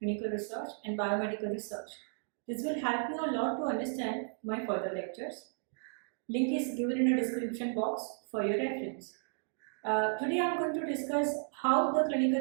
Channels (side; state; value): left; silent; digital silence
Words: research and biomedical research. This will help you a lot to understand my further lectures. Link is given in the description box for your reference. Today I am going to discuss how the clinical